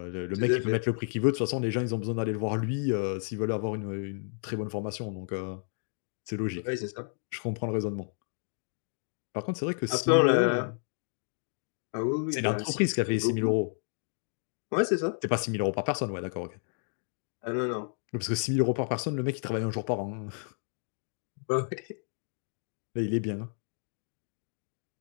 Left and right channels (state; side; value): silent; right; digital silence